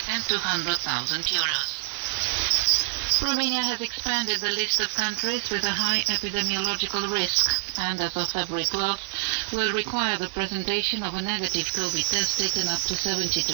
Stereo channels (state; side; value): silent; left; 61 dB below the other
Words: and 200,000 euros. Romania has expanded the list of countries with a high epidemiological risk and, as of February 12th, will require the presentation of a negative COVID test taken up to